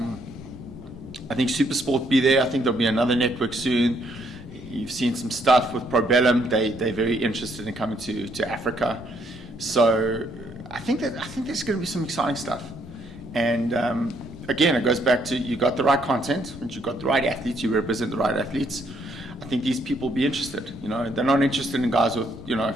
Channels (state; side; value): normal; both; correlation 0.70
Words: think Supersport will be there. I think there'll be another network soon. You've seen some stuff with Probellum. They're very interested in coming to Africa. So I think there's going to be some exciting stuff. And again, it goes back to, you got the right content, and you got the right athletes. You represent the right athletes. I think these people will be interested. They're not interested in guys with